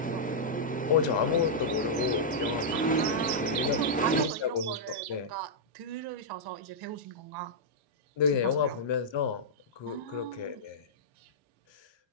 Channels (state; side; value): normal; both; correlation -0.09